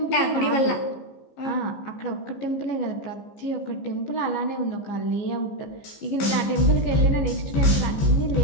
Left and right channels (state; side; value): late; right; 15 ms